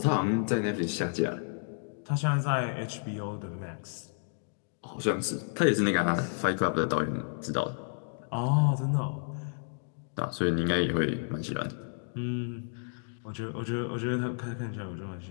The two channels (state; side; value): silent; right; digital silence